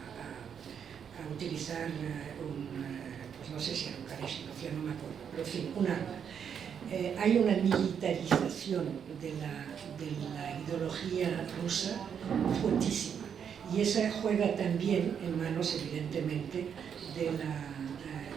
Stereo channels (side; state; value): left; quieter; 7.7 dB